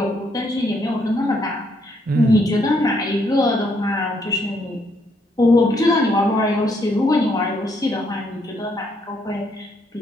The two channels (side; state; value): both; normal; correlation 0.72